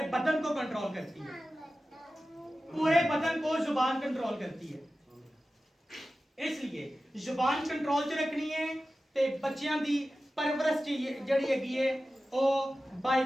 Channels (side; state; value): both; normal; correlation 0.95